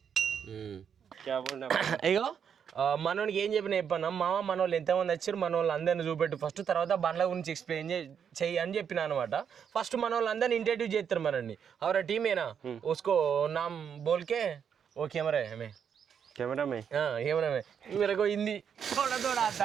అయ్యో మనోనికి ఏం చెప్పినా మామ మన వాళ్ళు ఎంతమంది వచ్చారు, మన వాళ్ళు అందరిని చూపెట్టు ఫస్ట్, తర్వాత బండ్ల గురించి ఎక్స్ప్లెయిన్ చెయ్యి అని చెప్పిన అనమాట. ఫస్ట్ మన వాళ్ళు అందరిని ఇంటర్వ్యూ చేస్తారు మనల్ని. అవరా టీమేనా उसको नाम बोल के वो कैमरा है हमें कैमरा में मेरे को हिंदी थोड़ा थोड़ा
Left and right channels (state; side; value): quieter; left; 7.6 dB